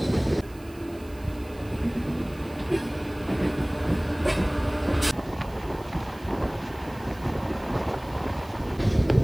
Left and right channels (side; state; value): right; noise; hiss, 24 dB below the sound